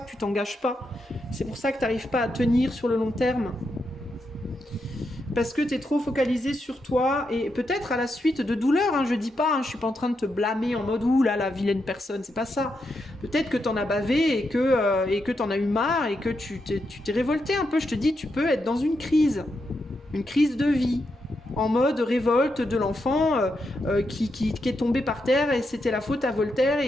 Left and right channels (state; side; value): normal; both; correlation 0.83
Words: tu t'engages pas. C'est pour ça que tu n'arrives pas à tenir sur le long terme. Parce que tu es trop focalisé sur toi et peut-être à la suite de douleurs, hein, je dis pas, hein, je suis pas en train de te blâmer en mode ouh là la vilaine personne, c'est pas ça. Peut-être que t'en as bavé et que t'en as eu marre et que tu t'es révolté un peu. Je te dis, tu peux être dans une crise de vie, en mode révolte de l'enfant qui est tombé par terre et c'était la faute à Voltaire